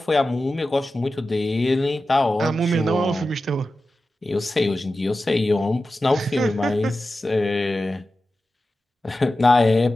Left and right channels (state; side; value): normal; both; correlation 0.93